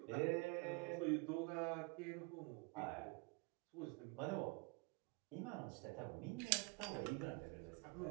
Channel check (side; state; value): left; quieter; 28.7 dB